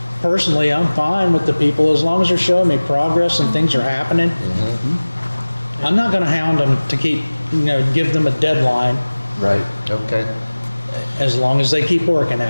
Personally, I'm fine with the people as long as they're showing me progress and things are happening. I'm not going to hound them to keep, give them a deadline. Right. Okay. As long as they keep working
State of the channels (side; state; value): both; inverted; correlation -1.00